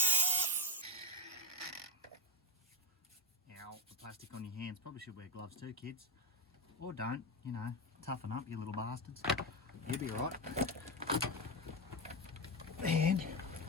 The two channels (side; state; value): both; normal; correlation 0.09